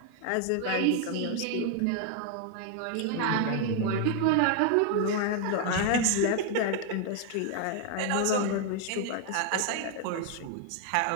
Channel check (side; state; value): both; different; correlation 0.00